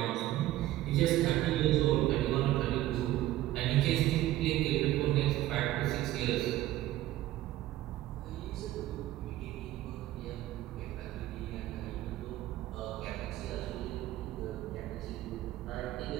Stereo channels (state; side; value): quieter; left; 15.0 dB